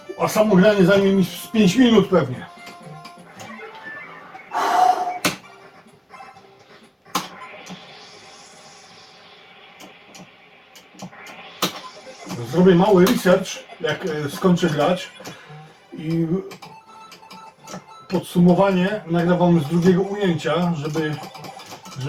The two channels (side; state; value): both; identical; correlation 1.00